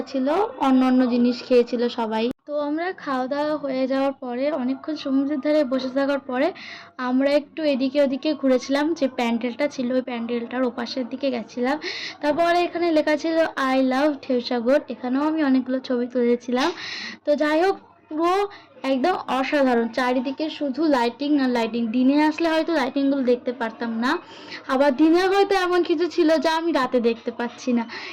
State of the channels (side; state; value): both; identical; correlation 1.00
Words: ছিল অন্য অন্য জিনিস খেয়েছিল সবাই। তো আমরা খাওয়া দাওয়া হয়ে যাওয়ার পরে অনেকক্ষণ সমুদ্রের ধারে বসে থাকার পরে আমরা একটু এদিকে ওদিকে ঘুরেছিলাম, যে প্যান্ডেলটা ছিল ওই প্যান্ডেলটার ওপাশের দিকে গেছিলাম। তারপরে এখানে লেখা ছিল আই লাভ ঢেউসাগর, এখানেও আমি অনেকগুলো ছবি তুলেছিলাম। তো যাই হোক, পুরো একদম অসাধারণ, চারিদিকে শুধু লাইটিং আর লাইটিং। দিনে আসলে হয়তো লাইটিংগুলো দেখতে পারতাম না, আবার দিনে হয়তো এমন কিছু ছিল যা আমি রাতে দেখতে পাচ্ছি না,